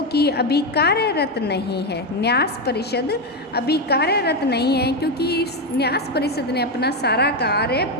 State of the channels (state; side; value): normal; both; correlation 0.09